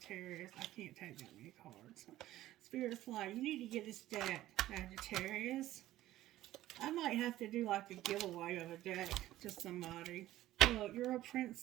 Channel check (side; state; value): left; quieter; 14.8 dB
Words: I can't take that many cards. Spirit's like, you need to get this deck, Sagittarius. I might have to do like a giveaway of a deck to somebody. Look, you're a